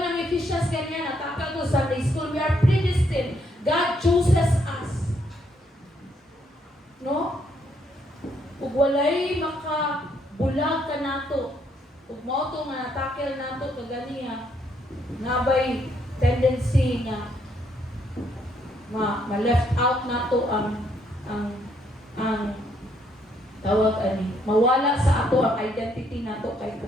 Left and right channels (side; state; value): both; normal; correlation 0.72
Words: Ephesians ganyan, natakal ko Sunday school, we are predestined. God chooses us. No? Ug walay makabulag ka nato. Ug mao to nga natakel nato kaganiya, nabay tendency nga ma-left out nato ang tawag ani, mawala sa ato ang identity nato kay